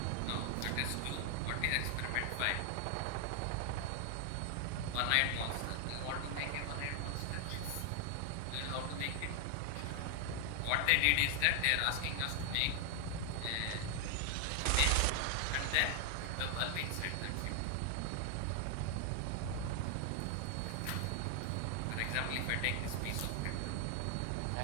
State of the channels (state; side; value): different; both; correlation 0.00